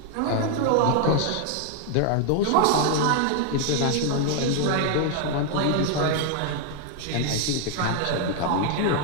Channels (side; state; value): both; different; correlation 0.00